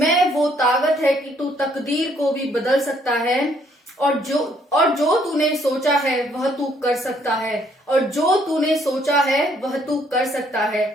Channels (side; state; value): both; normal; correlation 0.66